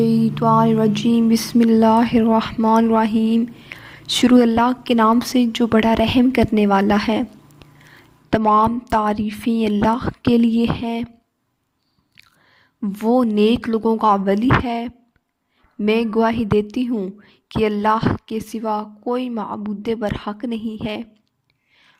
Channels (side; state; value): both; identical; correlation 1.00